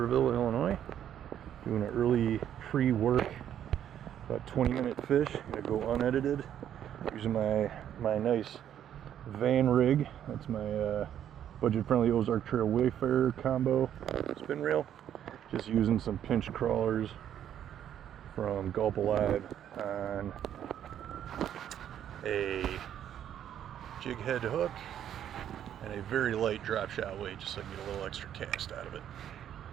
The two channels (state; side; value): quieter; left; 10.1 dB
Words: Illinois. Doing an early pre-work, about 20-minute fish. Gonna go unedited. Using my nice van rig. That's my budget-friendly Ozark Trail Wayfarer combo spin reel. Just using some pinch crawlers from Gulp Alive on a jig head hook and a very light drop shot weight, just so I can get a little extra cast out of it.